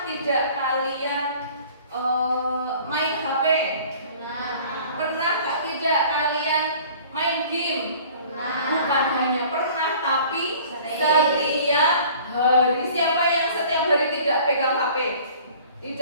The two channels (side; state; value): both; inverted; correlation -0.49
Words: tidak kalian main HP? Pernah tidak kalian main game? Bukan hanya pernah, tapi setiap hari. Siapa yang setiap hari tidak pegang HP?